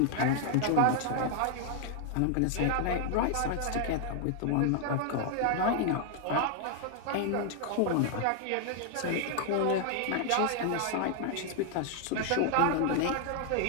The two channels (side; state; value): both; different; correlation 0.00